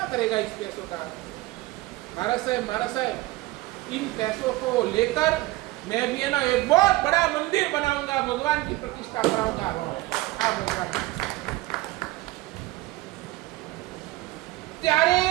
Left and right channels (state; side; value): quieter; left; 19.2 dB